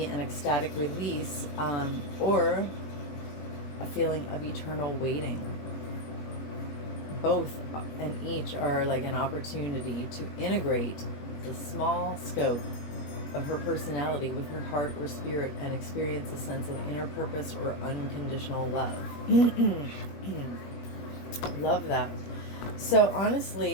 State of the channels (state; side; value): late; right; 21 ms